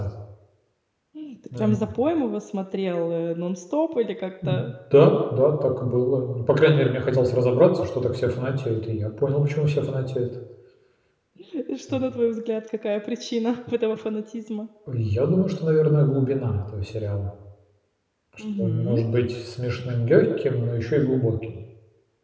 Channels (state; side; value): identical; both; correlation 1.00